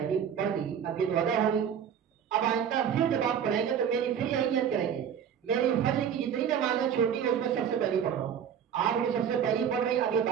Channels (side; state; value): left; quieter; 8.3 dB